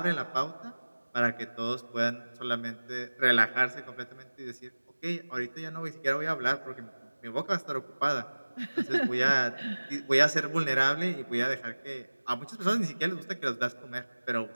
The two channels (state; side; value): inverted; both; correlation -1.00